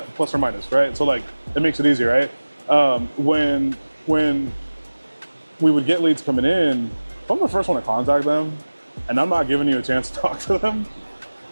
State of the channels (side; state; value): both; inverted; correlation -1.00